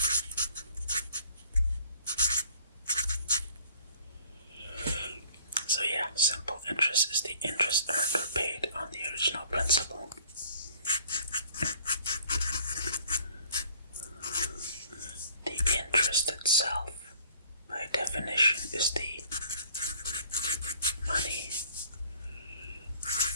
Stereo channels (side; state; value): both; inverted; correlation -0.55